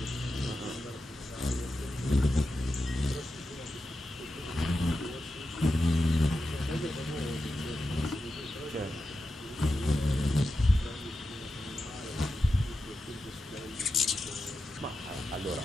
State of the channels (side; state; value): both; normal; correlation 0.90